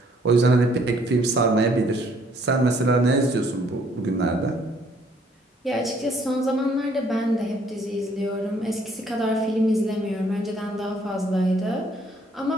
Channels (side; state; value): both; normal; correlation 0.64